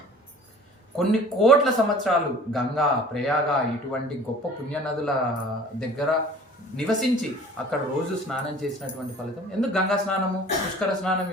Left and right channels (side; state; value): both; normal; correlation 0.47